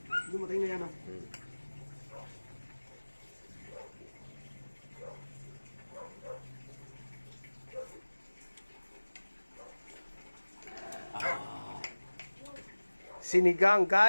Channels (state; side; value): inverted; both; correlation -1.00